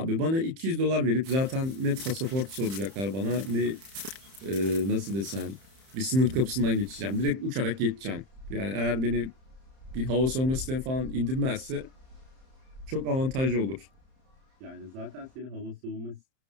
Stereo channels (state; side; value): late; left; 31 ms